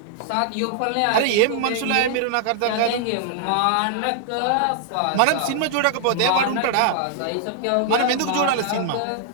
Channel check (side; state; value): both; different; correlation -0.01